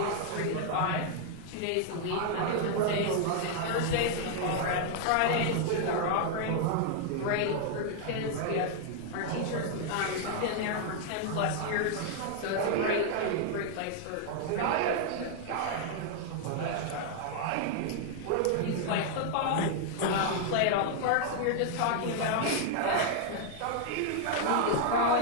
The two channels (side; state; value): both; different; correlation 0.00